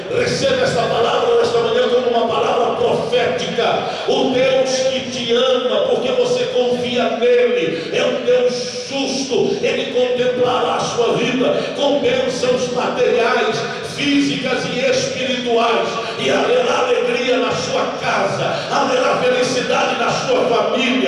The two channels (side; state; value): both; identical; correlation 1.00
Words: Receba esta palavra nesta manhã como uma palavra profética. O Deus que te ama, porque você confia nele, é um Deus justo. Ele contemplará a sua vida com bênçãos materiais, físicas e espirituais, e haverá alegria na sua casa, haverá felicidade na sua